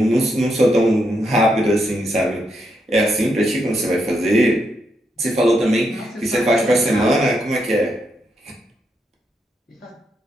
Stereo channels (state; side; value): normal; both; correlation 0.80